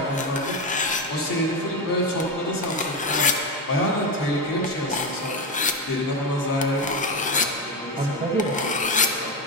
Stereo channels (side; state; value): both; normal; correlation 0.14